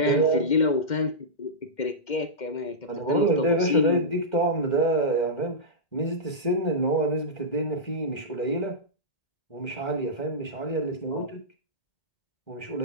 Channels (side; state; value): right; late; 2.1 ms